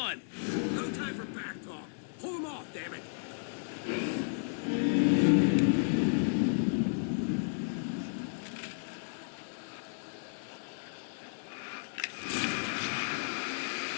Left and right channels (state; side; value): silent; right; digital silence